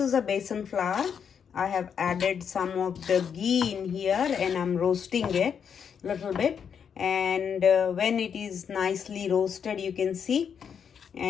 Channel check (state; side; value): quieter; right; 7.3 dB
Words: is a besan flour. I have added some of the ghee in here and I'm roasting it a little bit. And when it is nicely roasted, you can see.